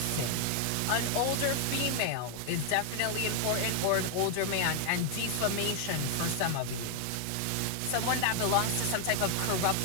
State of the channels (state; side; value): different; both; correlation 0.00